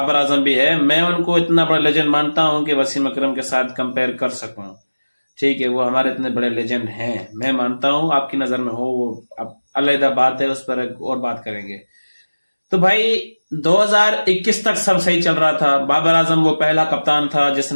आजम भी है। मैं उनको इतना बड़ा लेजेंड मानता हूं कि वसीम अकरम के साथ कंपेयर कर सकूं। ठीक है, वो हमारे इतने बड़े लेजेंड हैं, मैं मानता हूं। आपकी नजर में हो वो अब अलग बात है, उस पर एक और बात करेंगे। तो भाई 2021 तक सब सही चल रहा था। बाबर आजम वो पहला कप्तान था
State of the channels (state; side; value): inverted; both; correlation -1.00